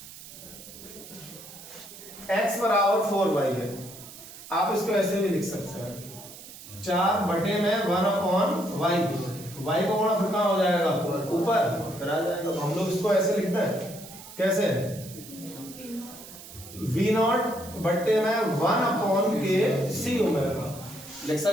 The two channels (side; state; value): right; noise; hiss, 16 dB below the sound